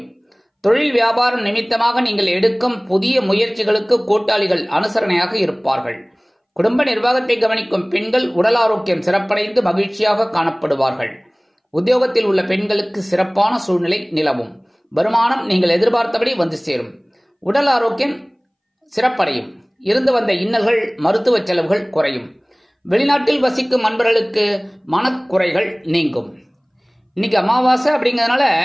தொழில் வியாபாரம் நிமித்தமாக நீங்கள் எடுக்கும் புதிய முயற்சிகளுக்கு கூட்டாளிகள் அனுசரணையாக இருப்பார்கள். குடும்ப நிர்வாகத்தை கவனிக்கும் பெண்கள் உடல் ஆரோக்கியம் சிறப்படைந்து மகிழ்ச்சியாக காணப்படுவார்கள். உத்தியோகத்தில் உள்ள பெண்களுக்கு சிறப்பான சூழ்நிலை நிலவும். வருமானம் நீங்கள் எதிர்பார்த்தபடி வந்து சேரும். உடல் ஆரோக்கியம் சிறப்படையும். இருந்து வந்த இன்னல்கள் மருத்துவ செலவுகள் குறையும். வெளிநாட்டில் வசிக்கும் நண்பர்களுக்கு மனக்குறைகள் நீங்கும். இன்னைக்கு அமாவாசை அப்படிங்கிறதுனால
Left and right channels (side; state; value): both; identical; correlation 1.00